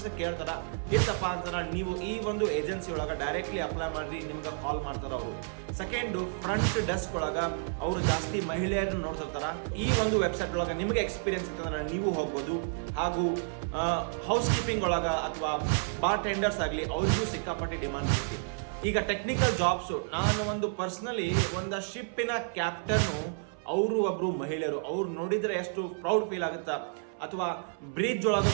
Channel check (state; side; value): silent; left; 56 dB below the other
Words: ಕೇಳ್ತಾರ. ಇತ್ತಪ್ಪ ಅಂತಂದ್ರೆ ನೀವು ಈ ಒಂದು ಏಜೆನ್ಸಿ ಒಳಗೆ ಡೈರೆಕ್ಟ್ಲಿ ಅಪ್ಲೈ ಮಾಡ್ರಿ, ನಿಮ್ಗೆ ಕಾಲ್ ಮಾಡ್ತಾರ ಅವರು. ಸೆಕೆಂಡು, ಫ್ರಂಟ್ ಡೆಸ್ಕ್ ಒಳಗ ಅವರು ಜಾಸ್ತಿ ಮಹಿಳೆಯರನ್ನ ನೋಡ್ತಿರ್ತಾರ. ಈ ಒಂದು ವೆಬ್ಸೈಟ್ ಒಳಗೆ ನಿಮಗೆ ಎಕ್ಸ್ಪೀರಿಯನ್ಸ್ ಇತ್ತಂದ್ರೆ ನೀವು ಹೋಗ್ಬೋದು. ಹಾಗೂ ಹೌಸ್ ಕೀಪಿಂಗ್ ಒಳಗ ಅಥವಾ ಬಾರ್ ಟೆಂಡರ್ಸ್ ಆಗಲಿ ಅವರಿಗೂ ಸಿಕ್ಕಾಪಟ್ಟೆ ಡಿಮಾಂಡ್ ಇರ್ತೈತಿ. ಈಗ ಟೆಕ್ನಿಕಲ್ ಜಾಬ್ಸು, ನಾನು ಒಂದು ಪರ್ಸನಲಿ ಒಂದು ಶಿಪ್ಪಿನ ಕ್ಯಾಪ್ಟನ್ನು, ಅವರು ಒಬ್ರು ಮಹಿಳೆಯರು. ಅವ್ರು ನೋಡಿದ್ರೆ ಎಷ್ಟು ಪ್ರೌಡ್ ಫೀಲ್ ಆಗುತ್ತಾ. ಅಥವಾ ಬ್ರಿಡ್ಜ್ ಒಳಗೆ